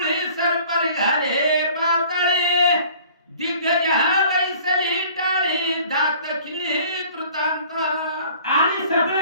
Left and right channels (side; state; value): both; inverted; correlation -0.50